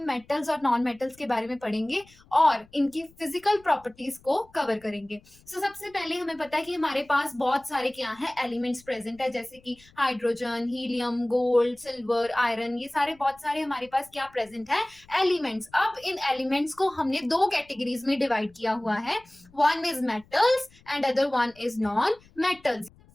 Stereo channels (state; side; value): noise; left; rumble, 28 dB below the sound